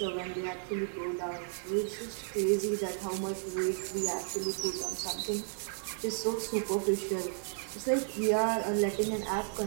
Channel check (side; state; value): left; silent; 56 dB below the other